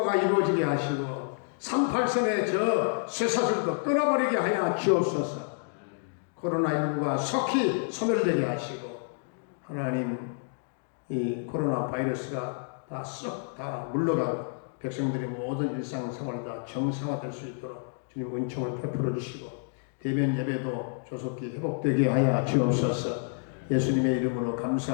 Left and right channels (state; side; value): silent; right; 59 dB below the other